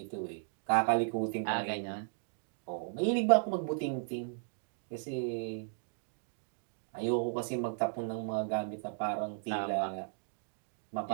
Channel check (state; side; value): silent; left; digital silence